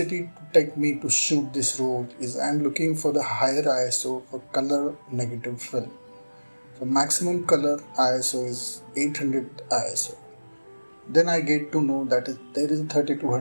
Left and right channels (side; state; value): both; inverted; correlation -1.00